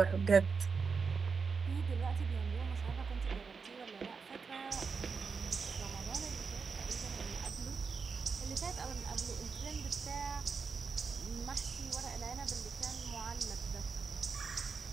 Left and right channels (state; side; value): quieter; left; 5.3 dB